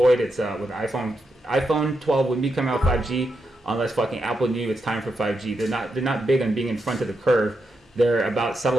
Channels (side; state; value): both; normal; correlation 0.85